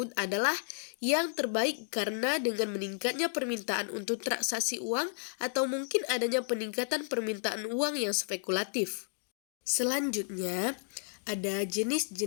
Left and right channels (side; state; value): right; silent; digital silence